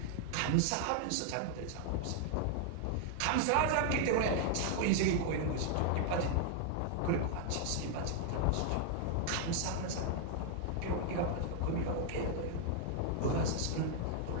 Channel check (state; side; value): different; both; correlation 0.00